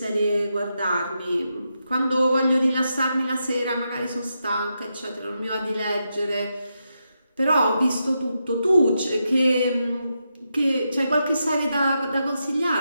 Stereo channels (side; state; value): both; inverted; correlation -0.85